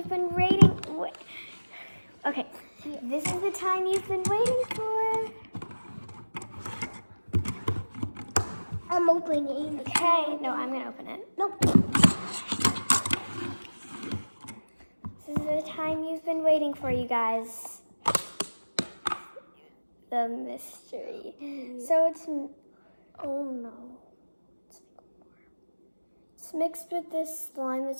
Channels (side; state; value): both; inverted; correlation -1.00